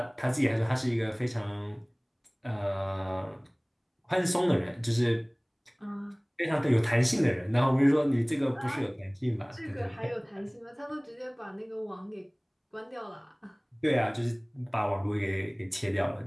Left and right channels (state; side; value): identical; both; correlation 1.00